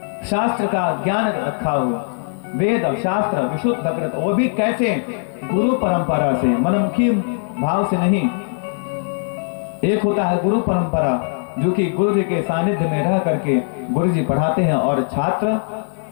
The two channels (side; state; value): right; silent; digital silence